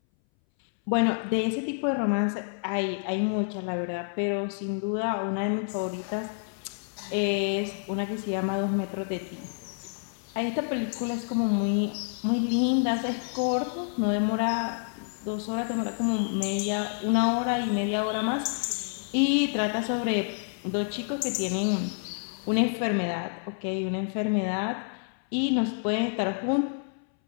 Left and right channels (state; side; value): silent; right; 59 dB below the other